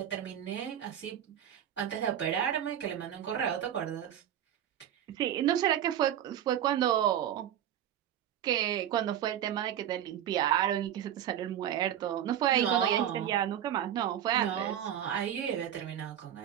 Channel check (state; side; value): quieter; left; 10.6 dB